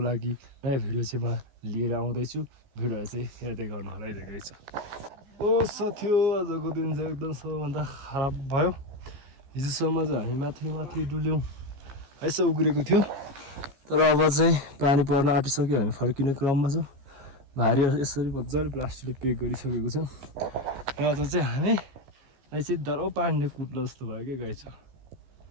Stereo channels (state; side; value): late; left; 15 ms